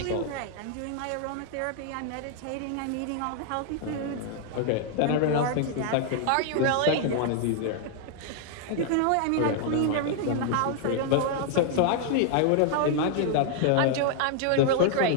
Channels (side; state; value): both; different; correlation 0.00